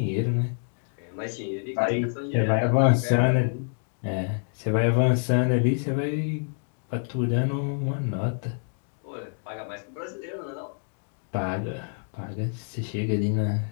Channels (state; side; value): silent; right; digital silence